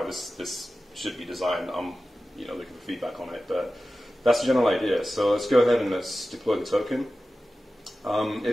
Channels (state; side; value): normal; both; correlation 0.95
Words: this should be designed. I'm looking for feedback on it, but that's the general idea. So let's go ahead and let's deploy the token.